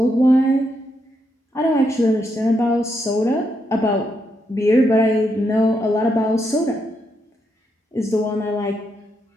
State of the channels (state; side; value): normal; both; correlation 0.80